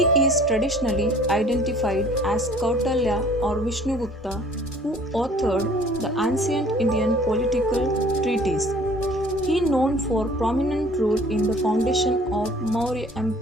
is traditionally identified as Kautilya or Vishnugupta, who authored the ancient Indian political treatise. He is known for prominent role in the foundation of Maurya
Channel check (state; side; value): normal; both; correlation 0.52